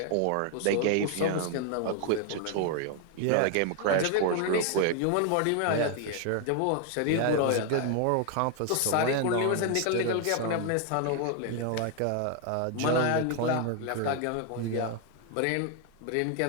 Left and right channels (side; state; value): both; different; correlation 0.00